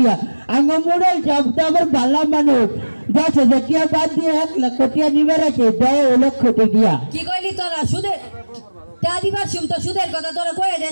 আমার মুন্ডল সব তো আমার ভালো মানুষ, 10,000 টিহা বাদ দিয়ে 1,00,000 টিহা নিবে রাখে, 10,00,000 টিহা। কি কইলি তোরা? সুদে তা দিবার শুম তো সুদের কথা তোরা কয়ে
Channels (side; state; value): both; inverted; correlation -1.00